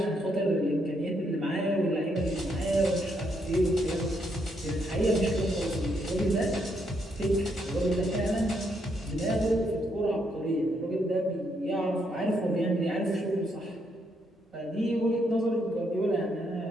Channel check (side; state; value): both; normal; correlation 0.76